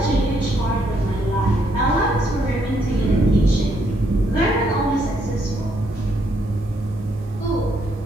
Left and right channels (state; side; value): normal; both; correlation 0.73